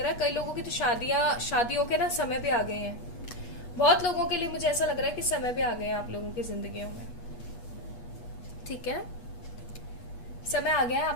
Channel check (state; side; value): late; right; 8.3 ms